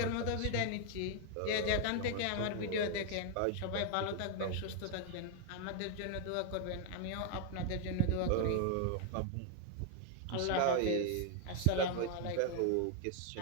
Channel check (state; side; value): different; both; correlation 0.00